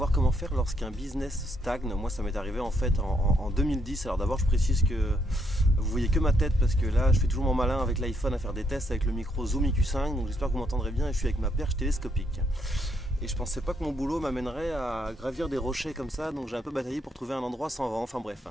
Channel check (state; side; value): normal; both; correlation 0.74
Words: comment faire lorsqu'un business stagne. Moi ça m'est arrivé en fait en 2010. Alors d'abord je précise que vous voyez que ma tête parce que là je fais toujours mon malin avec l'iPhone à faire des tests avec le micro Zoom IQ5. Donc j'espère que vous m'entendrez bien et je suis avec ma perche télescopique. Et je pensais pas que mon boulot m'amènerait à gravir des rochers comme ça, donc j'ai un peu bataillé pour trouver un endroit sans vent, enfin bref.